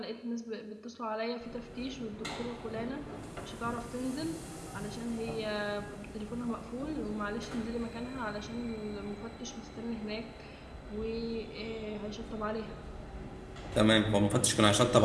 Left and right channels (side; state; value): both; identical; correlation 1.00